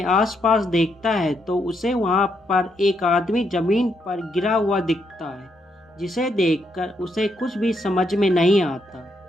आसपास देखता है तो उसे वहाँ पर एक आदमी ज़मीन पर गिरा हुआ दिखता है, जिसे देखकर उसे कुछ भी समझ में नहीं आता।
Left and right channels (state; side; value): normal; both; correlation 0.77